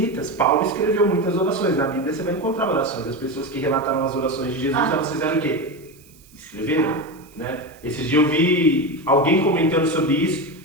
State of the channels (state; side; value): noise; right; hiss, 27 dB below the sound